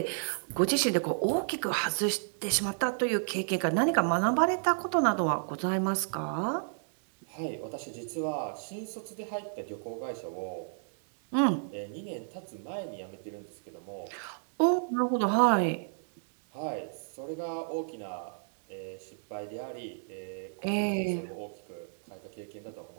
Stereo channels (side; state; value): left; silent; digital silence